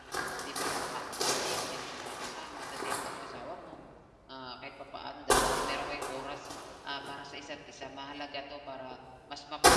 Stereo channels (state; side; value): identical; both; correlation 1.00